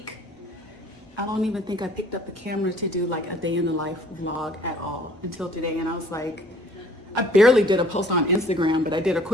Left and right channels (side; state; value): both; normal; correlation 0.55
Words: I don't even think I picked up the camera to do like a day in the life vlog at all until today. And I was like, I barely did a post on Instagram, but I did a